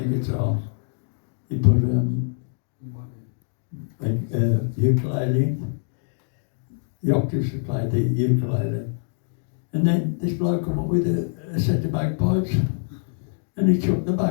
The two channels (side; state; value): right; silent; digital silence